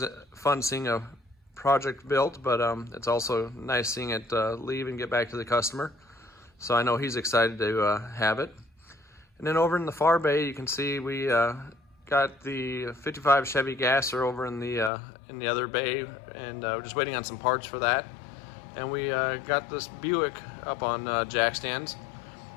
fun seeing a project built, but it's also nice seeing it leave and get back to the customer. So I know he's excited to have it. And then over in the far bay, you can see we got the 55 Chevy Gasser over in the other bay, and we're just waiting on some parts for that. And we got this Buick up on jack stands.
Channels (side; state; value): right; drops out; at 14.9 s